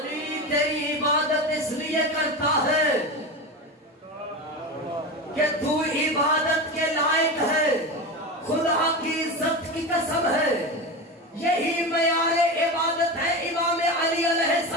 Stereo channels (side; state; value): both; normal; correlation 0.23